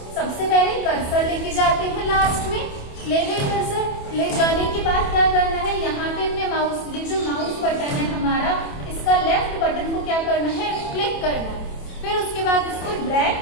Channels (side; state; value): right; late; 27 ms